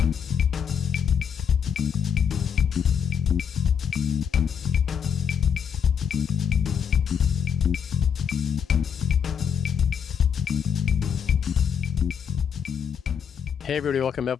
Hey everybody, welcome to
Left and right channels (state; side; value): quieter; right; 7.5 dB